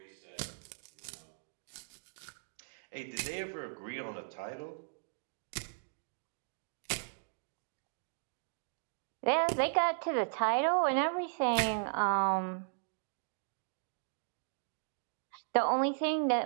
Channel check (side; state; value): left; silent; digital silence